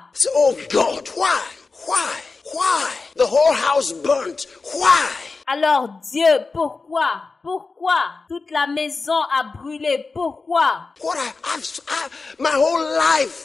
So, oh God, why? Why? Why? The whole house burnt. Why? Alors Dieu, pourquoi? Pourquoi? Toute la maison a brûlé. Pourquoi? What my whole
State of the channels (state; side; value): quieter; right; 4.1 dB